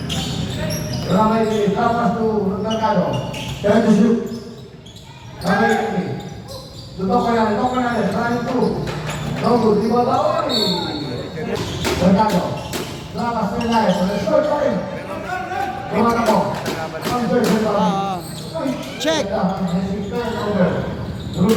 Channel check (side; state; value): both; identical; correlation 1.00